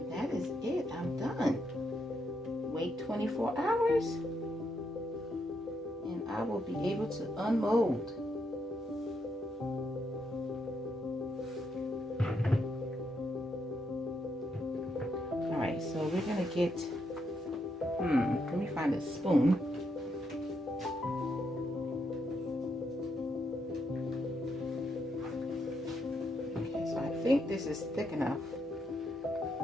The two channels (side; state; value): both; normal; correlation 0.79